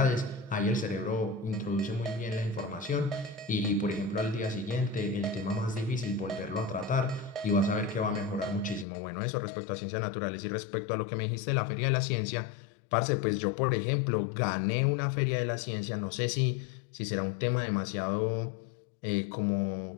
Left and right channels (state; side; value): drops out; right; at 8.8 s